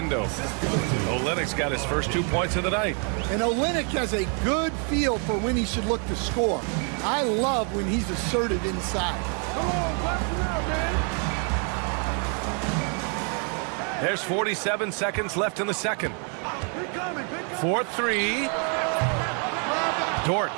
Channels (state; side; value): quieter; left; 39.8 dB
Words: Olenek's got his first 2 points of the night. And Olenek has a good feel for when he should look to score. I love when he's assertive inside. There's 47 seconds left in the second. 4-3. Dort